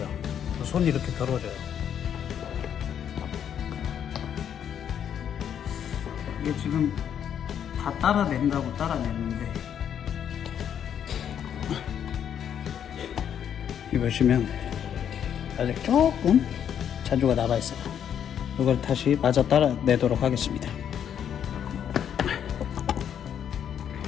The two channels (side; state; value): right; quieter; 8.9 dB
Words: 손이 이렇게 더러워져요. 이게 지금 다 따라낸다고 따라냈는데, 이 보시면 아직 조금 잔주가 남아있어요. 이걸 다시 마저 따라내도록 하겠습니다.